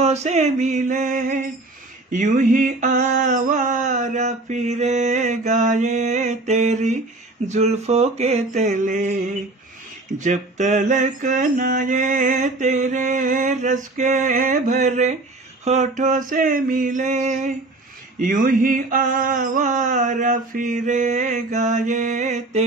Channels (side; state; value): left; quieter; 3.0 dB